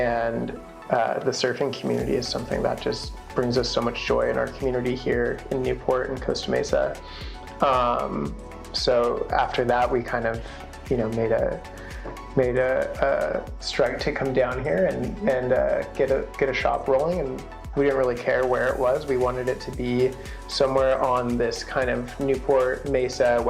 the surfing community is something that just brings us so much joy in our community here in Newport and Costa Mesa. So after that, we kind of, made a strike to come down here and get a shop rolling. And we didn't really care where it was. We wanted it to be somewhere on this kind of Newport Mesa,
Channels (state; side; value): identical; both; correlation 1.00